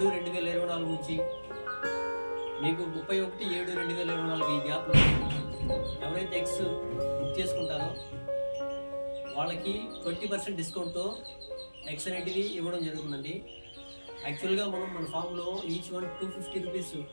నుంచి మీకు 31/7/2024 ఈ గ్యాప్లో ఎవరైతే ఎగ్స్ బుక్ చేసుకుంటారో వాళ్ళకి 20% డిస్కౌంట్తో ఎగ్స్ అనేటివి ఇవ్వడం జరుగుతుందండి. యాక్చువల్గా మనం మన ఫామ్లో ఈచ్ వన్ 250 రూపీస్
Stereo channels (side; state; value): both; inverted; correlation -1.00